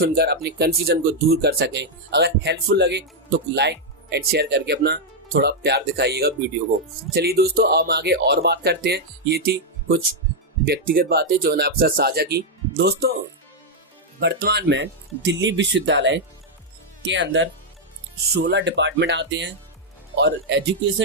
अपनी कंफ्यूजन को दूर कर सकें। अगर हेल्पफुल लगे तो लाइक एंड शेयर करके अपना थोड़ा प्यार दिखाइएगा वीडियो को। चलिए दोस्तों अब आगे और बात करते हैं। ये थी कुछ व्यक्तिगत बातें जो मैंने आपके साथ साझा की। दोस्तों वर्तमान में दिल्ली विश्वविद्यालय के अंदर 16 डिपार्टमेंट आते हैं और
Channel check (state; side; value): normal; both; correlation -0.01